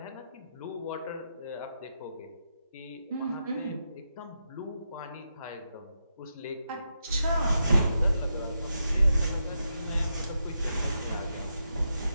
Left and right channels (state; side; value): inverted; both; correlation -0.84